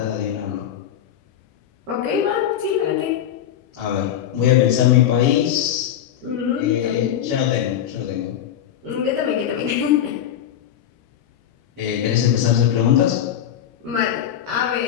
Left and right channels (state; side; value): quieter; right; 10.2 dB